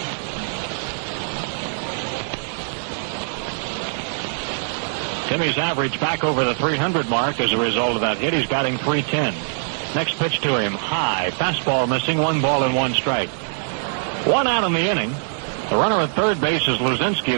Timmy's average back over the 300 mark as a result of that hit. He's batting .310. Next pitch to him, high. Fastball missing, 1 ball and 1 strike. 1 out in the inning. The runner at third base is Luzinski.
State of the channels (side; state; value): left; silent; 64 dB below the other